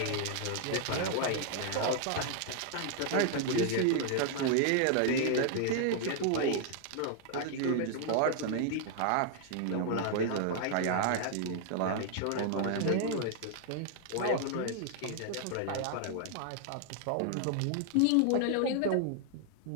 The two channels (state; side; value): different; both; correlation 0.00